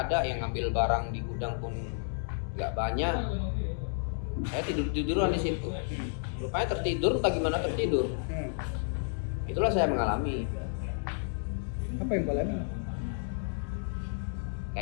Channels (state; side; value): silent; right; digital silence